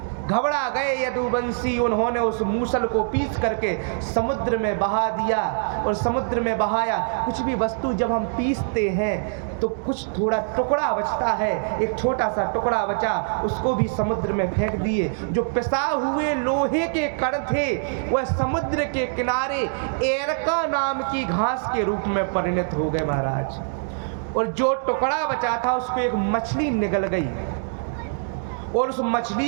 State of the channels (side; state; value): left; silent; digital silence